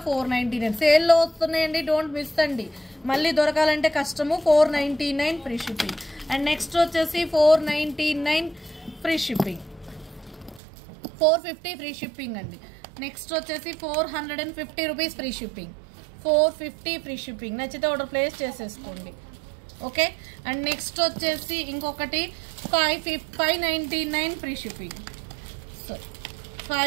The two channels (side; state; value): left; drops out; at 10.6 s